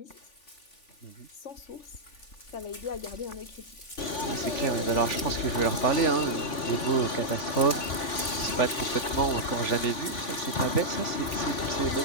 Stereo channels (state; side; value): late; right; 3.5 ms